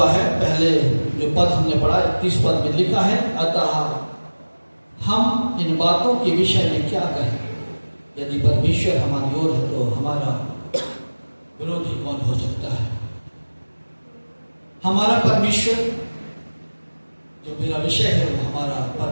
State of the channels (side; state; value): both; inverted; correlation -1.00